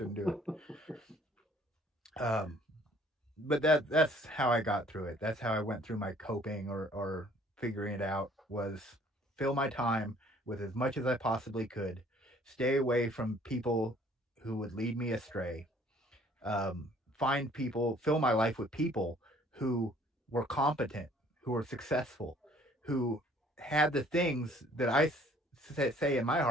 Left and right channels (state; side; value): normal; both; correlation 0.58